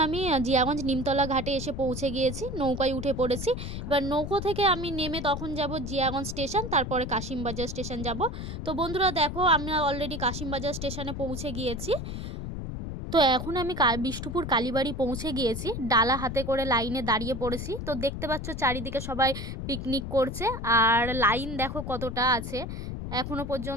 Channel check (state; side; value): noise; left; rumble, 6 dB below the sound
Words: আমি জিয়াগঞ্জ নিমতলা ঘাটে এসে পৌঁছে গিয়েছি, নৌকায় উঠে পড়েছি। এবার নৌকো থেকে আমি নেমে তখন যাব জিয়াগঞ্জ স্টেশন, তারপরে কাশিমবাজার স্টেশন যাব। তো বন্ধুরা দেখো আমরা অলরেডি কাশিমবাজার স্টেশনে পৌঁছে গিয়েছি। তো এখন আমি বিষ্ণুপুর কালীবাড়ি পৌঁছে গিয়েছি, ডালা হাতে করে লাইনে দাঁড়িয়ে পড়েছি। তো দেখতে পাচ্ছ চারিদিকে সবাই পিকনিক করছে, আর লাইন দেখো কতটা আছে এখনো